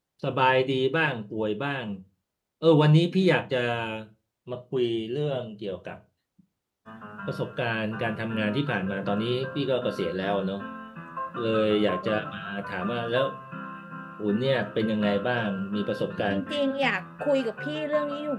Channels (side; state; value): both; identical; correlation 1.00